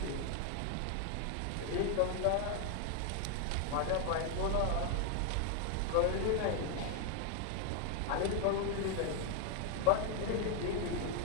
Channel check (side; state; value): both; different; correlation 0.00